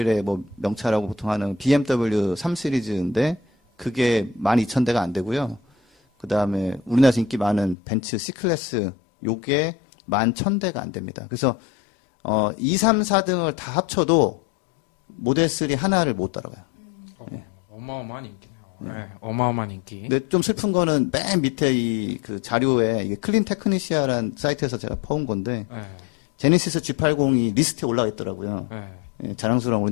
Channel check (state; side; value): drops out; right; at 7.8 s